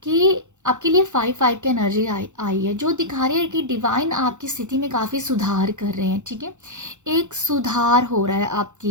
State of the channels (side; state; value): left; late; 0.84 ms